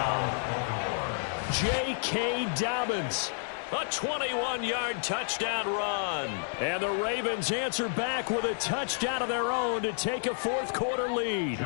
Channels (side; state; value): right; silent; digital silence